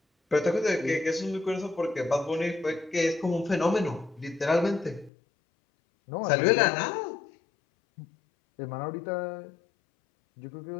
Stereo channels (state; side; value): drops out; right; at 5.1 s